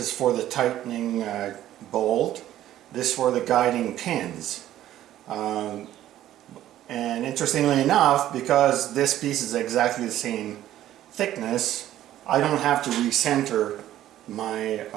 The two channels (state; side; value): quieter; left; 12.9 dB